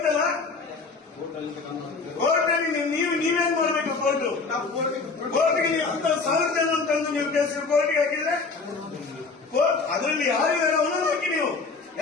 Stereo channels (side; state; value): right; quieter; 4.3 dB